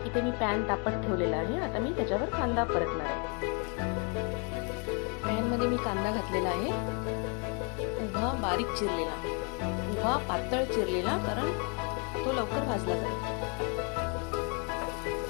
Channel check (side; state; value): right; quieter; 36.4 dB